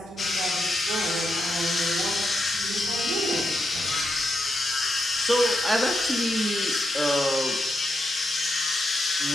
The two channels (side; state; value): both; normal; correlation 0.84